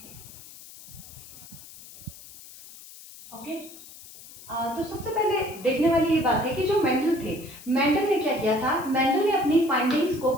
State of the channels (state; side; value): noise; left; hiss, 18 dB below the sound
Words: Okay? तो सबसे पहले देखने वाली ये बात है कि जो मेंडल थे, मेंडल ने क्या किया था? मेंडल ने अपनी फाइंडिंग्स को